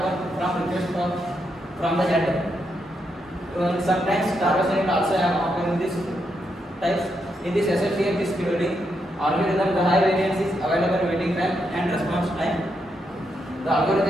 from request from the header. Sometimes starvation also happen in this types. In this SSTF disk scheduling algorithm, the high variance is available waiting time and response time. The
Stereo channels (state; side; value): normal; both; correlation 0.81